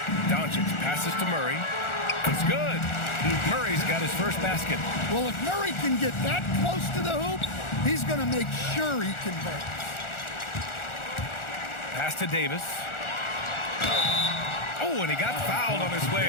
Doncic passes to Murray. It's good. Murray's got his first basket. Well, if Murray can get that close to the hoop, he's going to make sure he converts. Pass to Davis. Oh, and he got fouled on his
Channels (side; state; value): right; late; 1.4 ms